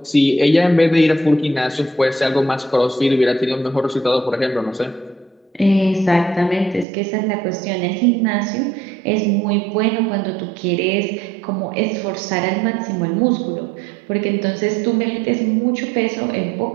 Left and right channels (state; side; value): drops out; left; at 6.9 s